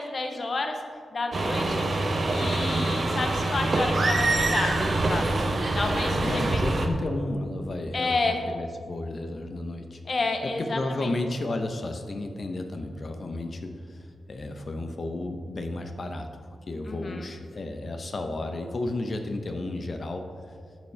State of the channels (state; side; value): normal; both; correlation 0.89